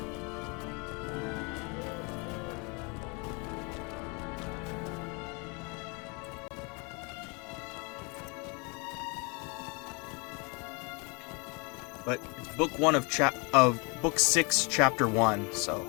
But it's book 1 of book 6, chapter 1, so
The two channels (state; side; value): quieter; right; 31.4 dB